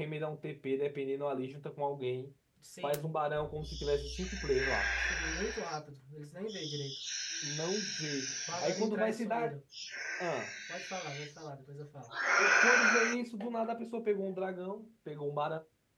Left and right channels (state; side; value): identical; both; correlation 1.00